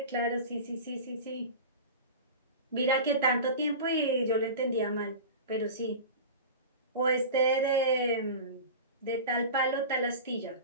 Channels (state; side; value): inverted; both; correlation -0.31